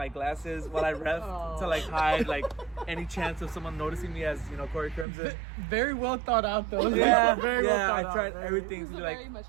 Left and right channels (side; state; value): left; drops out; at 5.1 s